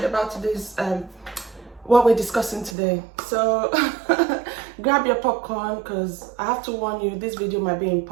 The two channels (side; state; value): left; drops out; at 2.8 s